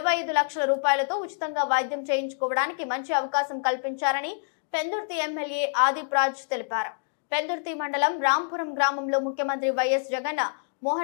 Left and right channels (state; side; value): silent; right; digital silence